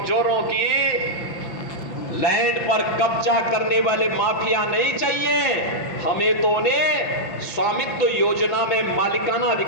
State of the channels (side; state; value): right; late; 5.8 ms